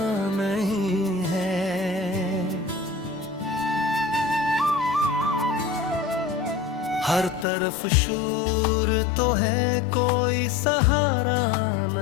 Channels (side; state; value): right; drops out; at 7.5 s